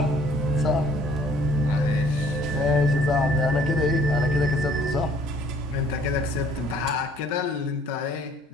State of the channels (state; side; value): normal; both; correlation 0.57